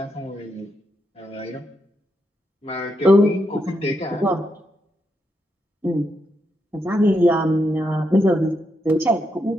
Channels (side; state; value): both; normal; correlation 0.82